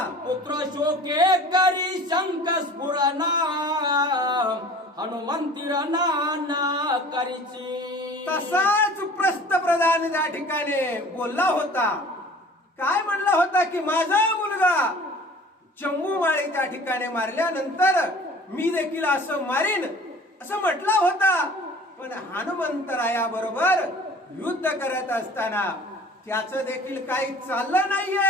पुत्र शोके करी शंक स्फुरणा हनुमंतीर नाना करीची. तसाच प्रस्त प्रधान त्या ठिकाणी बोलला होता. काय म्हणला होता की माझा मुलगा जम्बूमाळी त्या ठिकाणी मारल्यानंतर मी देखील असं मारीन असं म्हटला होता. पण हनुमंतरायाबरोबर युद्ध करत असताना त्याचं देखील काही चाललं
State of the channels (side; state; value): both; normal; correlation 0.46